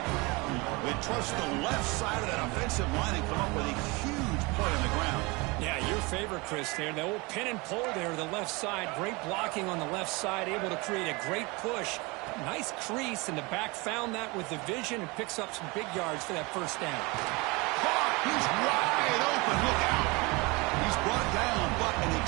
They trust the left side of that offensive line and come up with a huge play on the ground. Yeah, your favorite, Chris, there. The old pin and pull there, the left side. Great blocking on the left side, able to create a great push. Nice crease, and the back found that with the vision and picks up some big yards for that first down. He's wide open. Look out. He's brought down, but an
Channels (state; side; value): quieter; left; 25.8 dB